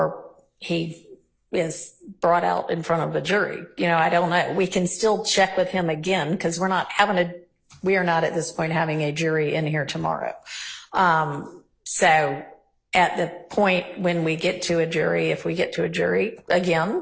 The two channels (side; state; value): both; identical; correlation 1.00